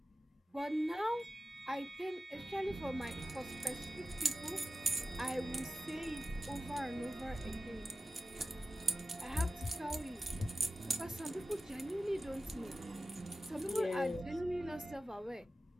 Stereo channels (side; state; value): both; normal; correlation 0.93